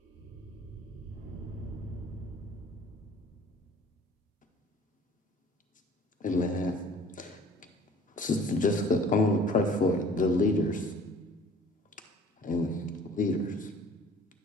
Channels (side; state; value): both; normal; correlation 0.50